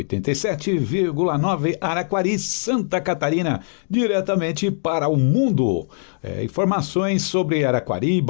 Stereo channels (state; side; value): silent; right; digital silence